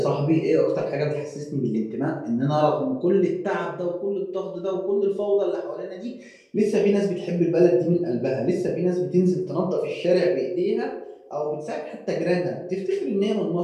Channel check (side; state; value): both; identical; correlation 1.00